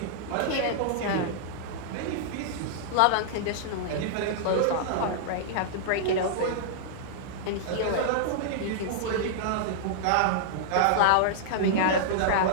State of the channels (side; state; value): both; different; correlation -0.01